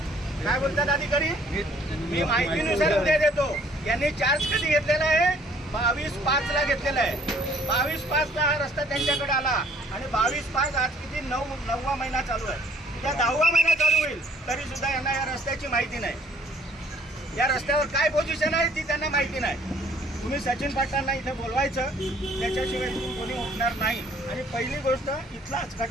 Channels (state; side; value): normal; both; correlation 0.59